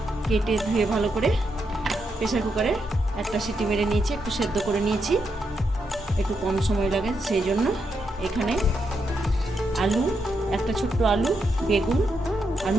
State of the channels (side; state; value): both; normal; correlation 0.81